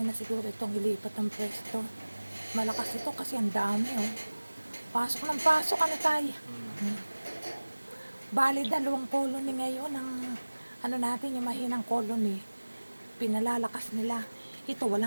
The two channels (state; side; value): inverted; both; correlation -1.00